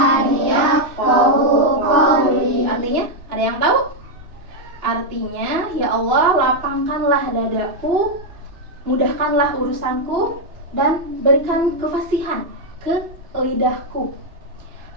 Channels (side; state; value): left; late; 2.9 ms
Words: yafqahu qawli. Artinya, ada yang tahu? Artinya, ya Allah, lapangkanlah dadaku, mudahkanlah urusanku, dan berikan kefasihan ke lidahku